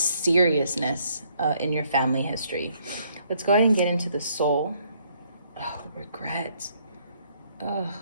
in your family history. Let's go ahead and get into the soul. Oh, regret. Oh,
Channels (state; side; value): inverted; both; correlation -0.68